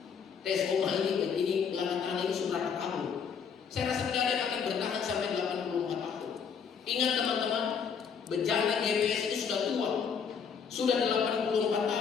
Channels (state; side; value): quieter; right; 6.6 dB